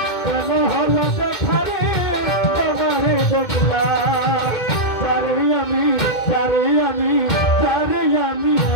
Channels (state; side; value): late; right; 2.1 ms